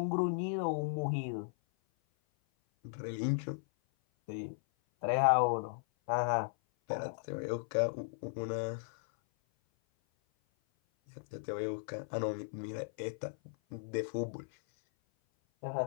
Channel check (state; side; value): silent; right; 54 dB below the other